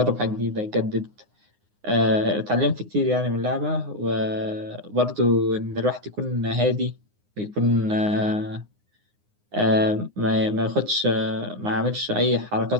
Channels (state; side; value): late; left; 9.7 ms